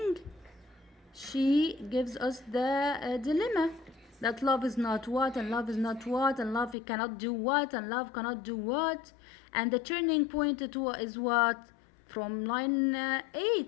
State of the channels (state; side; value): drops out; right; at 6.8 s